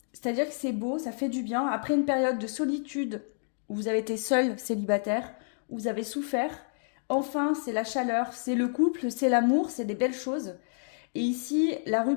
C'est-à-dire que c'est beau, ça fait du bien. Après une période de solitude où vous avez été seul, célibataire, où vous avez souffert, enfin, c'est la chaleur, c'est le couple, c'est l'amour, c'est des belles choses. Et ici, la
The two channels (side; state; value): right; silent; digital silence